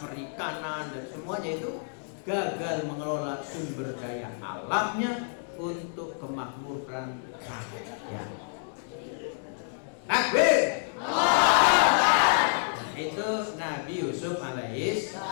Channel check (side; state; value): right; silent; digital silence